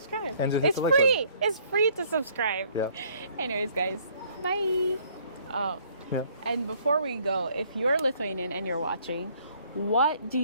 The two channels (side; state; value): both; inverted; correlation -0.61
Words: And just it's free. It's free to subscribe. Yeah. Anyways, guys, bye. And before we go, if you're Lithuanian and you're watching, what do